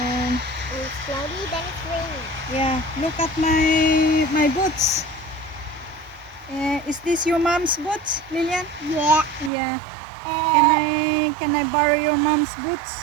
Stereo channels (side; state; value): left; drops out; at 9.5 s